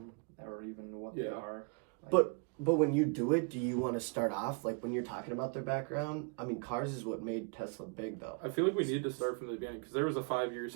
or even what they Yeah. are. Like, But when you do it, do you want to start off like when you're talking about their background? I mean, cars is what made Tesla big, though. I feel like we need to start from the beginning because there was a 5-year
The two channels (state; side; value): quieter; left; 38.0 dB